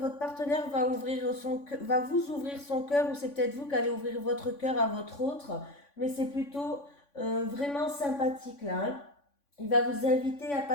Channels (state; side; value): late; right; 3.5 ms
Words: partenaire va vous ouvrir son cœur, ou c'est peut-être vous qui allez ouvrir votre cœur à votre autre, mais c'est plutôt vraiment sympathique là. Hein. Il va vous inviter à